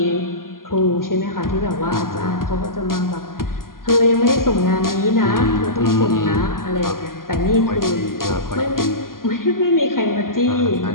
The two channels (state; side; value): late; right; 0.91 ms